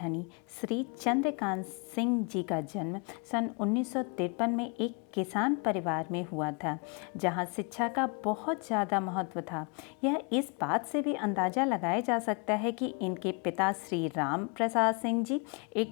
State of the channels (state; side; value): quieter; right; 35.0 dB